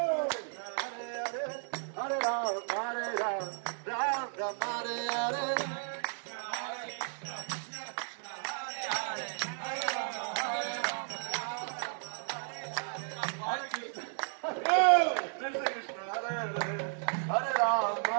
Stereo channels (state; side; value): silent; left; digital silence